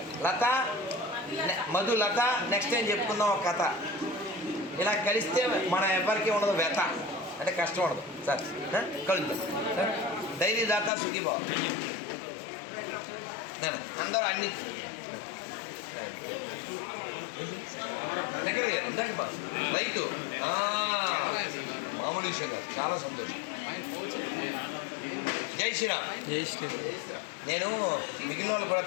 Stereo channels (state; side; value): drops out; right; at 10.9 s